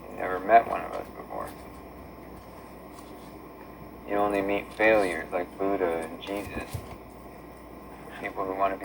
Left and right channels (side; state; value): both; identical; correlation 1.00